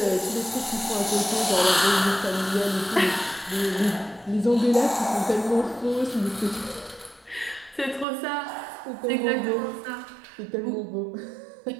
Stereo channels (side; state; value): left; drops out; at 8.1 s